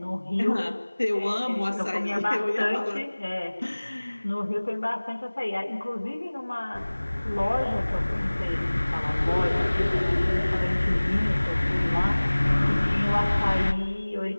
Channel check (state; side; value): inverted; both; correlation -1.00